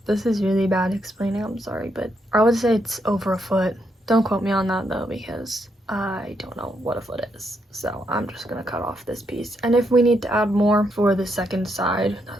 This is really bad explaining, I'm sorry, but I would say it's over a foot. Don't quote me on that though, because I don't know what a foot is. So I'm just gonna cut off this piece. And if we need to add more for the second side,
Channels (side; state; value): both; normal; correlation 0.78